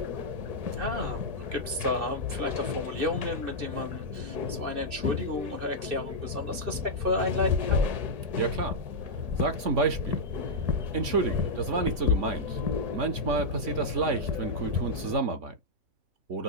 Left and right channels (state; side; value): late; left; 2.6 ms